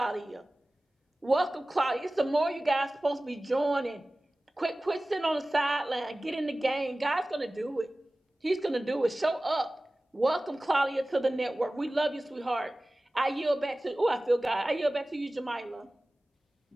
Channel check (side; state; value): both; normal; correlation 0.97